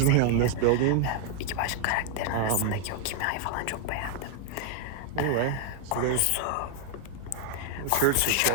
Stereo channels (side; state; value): both; different; correlation 0.00